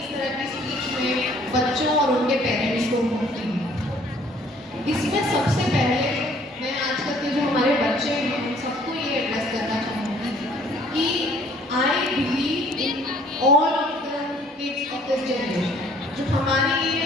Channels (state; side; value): normal; both; correlation 0.58